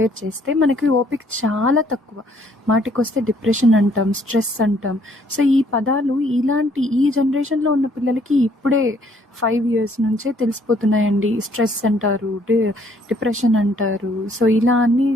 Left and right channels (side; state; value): both; normal; correlation 0.64